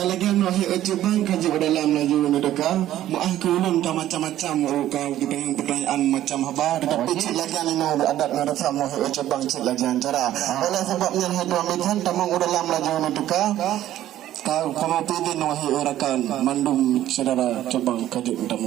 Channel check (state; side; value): quieter; left; 13.0 dB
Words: lagi nak ujuk bang kaji dalam laju mendeka. Muah kulun macam-macam kau kita yang pertanyaan macam apa. Tetapi cik lagi ni nak adat ngarasa muah ujuk bang cik lagi cara. Oleh sebabnya hadu amitan tamang dalam laju mendeka. Kau kamu pilih nuhi orakan mandum saudara coba kaji